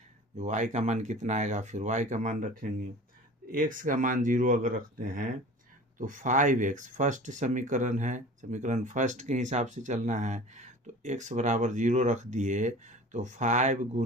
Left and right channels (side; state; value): both; normal; correlation 0.40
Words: y का मान कितना आएगा, फिर y का मान रखेंगे। x का मान 0 अगर रखते हैं तो 5x फर्स्ट समीकरण है, समीकरण फर्स्ट के हिसाब से चलना है। तो x बराबर 0 रख दिए तो 5